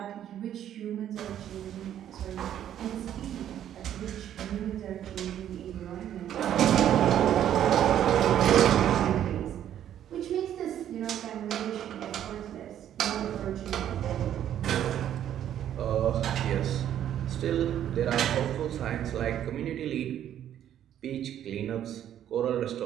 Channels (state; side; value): quieter; left; 10.7 dB